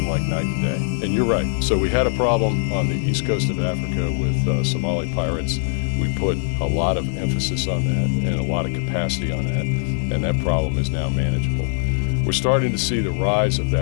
like night and day. And you're right. So we had a problem on the east coast of Africa with Somali pirates. We put a lot of emphasis on that and a lot of capacity on that. and that problem is now manageable. We're starting to see the rise of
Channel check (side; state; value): right; silent; digital silence